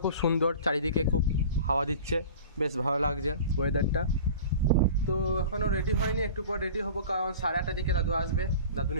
খুব সুন্দর, চারিদিকে খুব হাওয়া দিচ্ছে, বেশ ভালো লাগছে ওয়েদারটা। তো এখনও রেডি হয়নি, একটু পর রেডি হবো, কারণ 8:30 দিকে দাদু আসবে, দাদু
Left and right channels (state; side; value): inverted; both; correlation -0.39